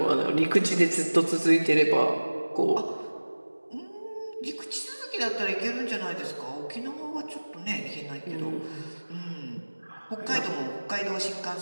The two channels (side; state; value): both; inverted; correlation -1.00